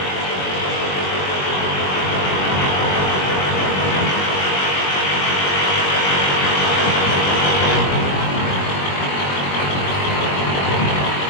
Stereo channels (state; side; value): late; right; 21 ms